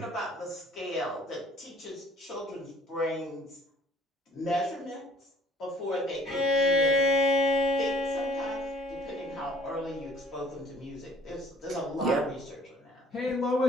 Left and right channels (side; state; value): both; normal; correlation 0.56